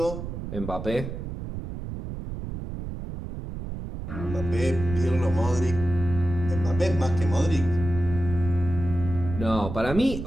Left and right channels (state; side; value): noise; right; rumble, 7 dB below the sound